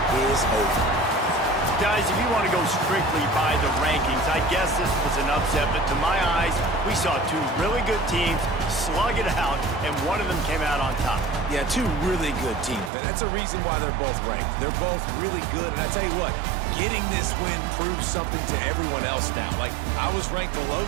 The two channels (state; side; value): drops out; left; at 12.9 s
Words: is over. Guys, if you want to go strictly by the rankings, I guess this was an upset, but to my eyes, we saw two really good teams slug it out, and one of them came out on top. Yeah, two really good teams, man. That's a reason why they're both ranked. They're both really good, and I tell you what, getting this win proves something to everyone else now. Like, I was ranked below